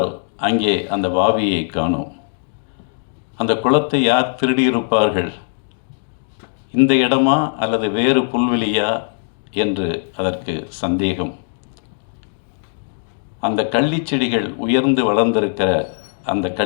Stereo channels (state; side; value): silent; right; digital silence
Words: அங்கே அந்த வாவியை காணோம். அந்த குளத்தை யார் திருடியிருப்பார்கள்? இந்த இடமா அல்லது வேறு புல்வெளியா என்று அதற்கு சந்தேகம். அந்த கள்ளிச்செடிகள் உயர்ந்து வளர்ந்திருக்கிற அந்த